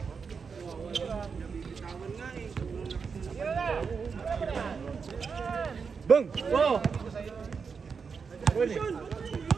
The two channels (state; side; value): quieter; left; 5.6 dB